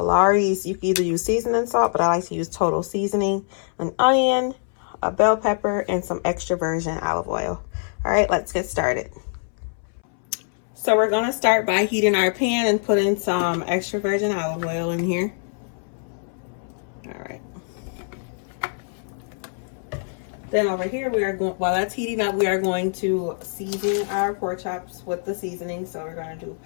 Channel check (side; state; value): right; silent; 63 dB below the other